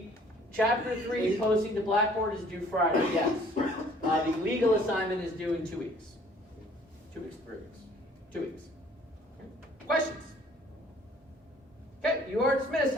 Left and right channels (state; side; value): normal; both; correlation 0.56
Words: Chapter 3 posting to Blackboard is due Friday, yes. The legal assignment is due in 2 weeks. 2 weeks, 3 weeks. 2 weeks. Okay. Questions? Okay, you are dismissed.